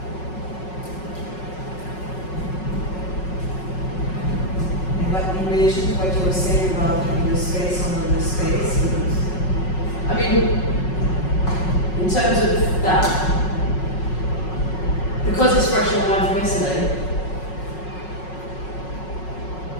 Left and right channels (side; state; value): right; late; 5.4 ms